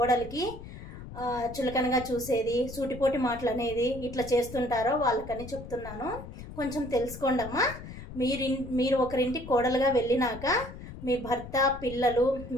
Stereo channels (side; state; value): left; noise; rumble, 12 dB below the sound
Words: చులకనగా చూసేది, సూటిపోటి మాటలు అనేది ఇట్లా చేస్తుంటారో వాళ్ళకని చెప్తున్నాను. కొంచెం తెలుసుకోండి అమ్మా. మీరు ఒకరింటికి కోడలుగా వెళ్ళినాక మీ భర్త, పిల్లలు,